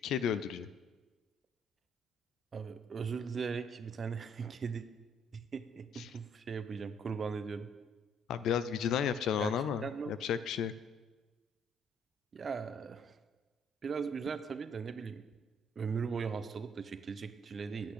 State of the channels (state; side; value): normal; both; correlation 0.64